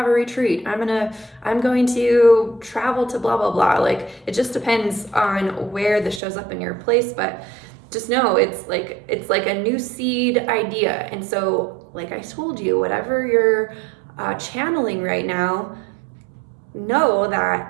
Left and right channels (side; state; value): left; drops out; at 6.2 s